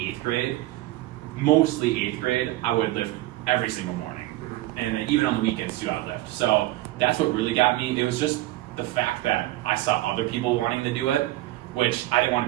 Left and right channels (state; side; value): quieter; left; 16.9 dB